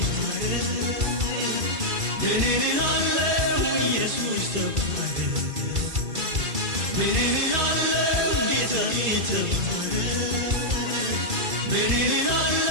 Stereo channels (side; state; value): left; late; 2.5 ms